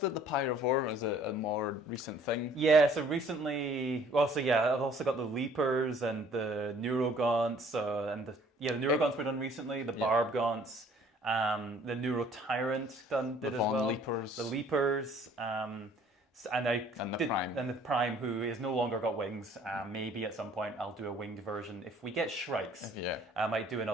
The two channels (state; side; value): normal; both; correlation 0.56